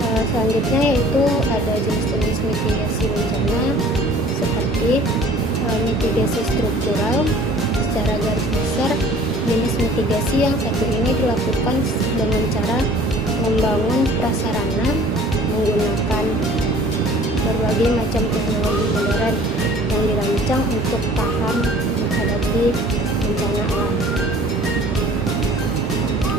Selanjutnya yaitu ada jenis-jenis mitigasi bencana seperti mitigasi struktural. Secara garis besar, jenis mitigasi yang satu ini dilakukan dengan cara membangun prasarana menggunakan berbagai macam teknologi modern yang dirancang untuk tahan menghadapi bencana alam.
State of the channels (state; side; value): normal; both; correlation 0.50